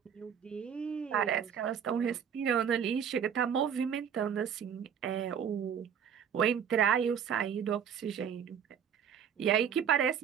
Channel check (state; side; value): quieter; left; 8.0 dB